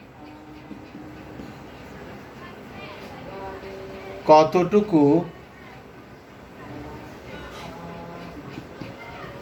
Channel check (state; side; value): identical; both; correlation 1.00